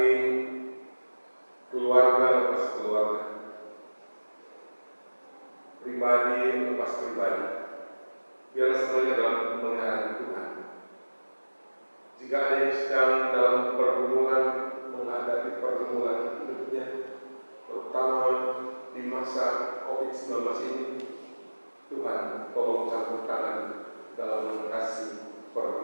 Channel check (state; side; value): inverted; both; correlation -1.00